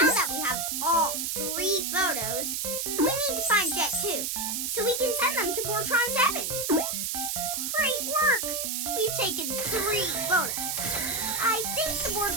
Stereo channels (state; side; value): noise; right; hiss, 1 dB below the sound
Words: we have all 3 photos, we need to find Jet 2, so we can send them to Bortron 7. Great work! We've taken 3 photos. I think the